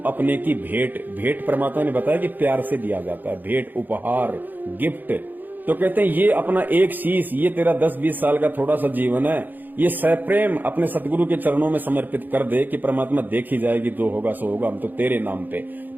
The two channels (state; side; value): late; left; 0.087 ms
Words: अपने की भेंट। भेंट परमात्मा ने बताया कि प्यार से दिया जाता है, भेंट, उपहार, गिफ्ट। तो कहते हैं ये अपना एक शीश, ये तेरा 10-20 साल का थोड़ा सा जीवन है, ये सप्रेम अपने सतगुरु के चरणों में समर्पित कर दे कि परमात्मा देखी जाएगी, जो होगा सो होगा, हम तो तेरे नाम पे।